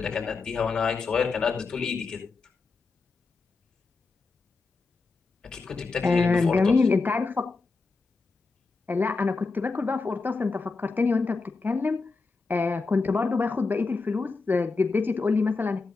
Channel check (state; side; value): quieter; right; 4.1 dB